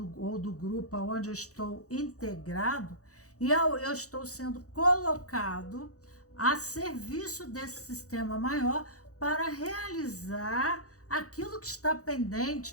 ou do grupo aonde eu estou integrado, e eu estou sendo colocado a serviço desse sistema maior para realizar aquilo que está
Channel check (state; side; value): late; right; 0.66 ms